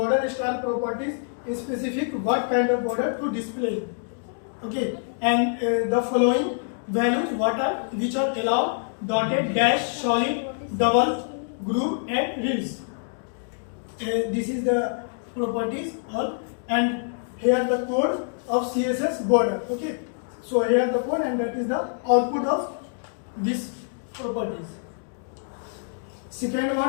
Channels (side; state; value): right; silent; digital silence